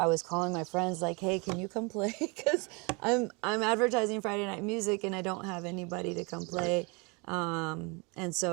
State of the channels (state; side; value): quieter; left; 30.0 dB